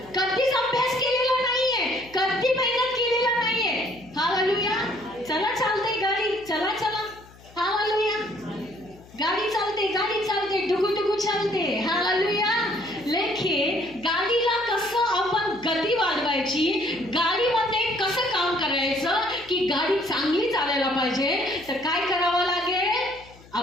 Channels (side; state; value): left; noise; hum, 24 dB below the sound